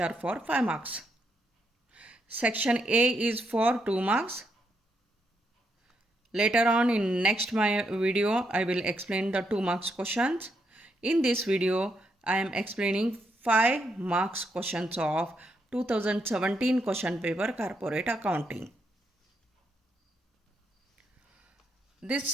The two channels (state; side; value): normal; both; correlation 0.79